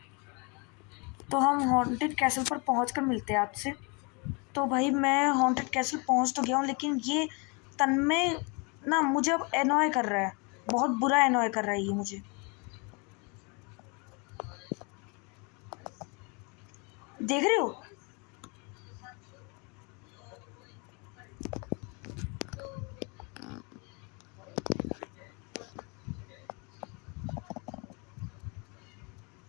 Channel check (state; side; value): quieter; right; 31.7 dB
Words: तो हम हॉन्टेड कैसल पर पहुँच कर मिलते हैं आपसे। तो भाई मैं हॉन्टेड कैसल पहुँच तो गया हूँ, लेकिन ये तन्मय ना मुझे अब एनॉय कर रहा है, बहुत बुरा एनॉय कर रहा है ये मुझे। देख रहे हो?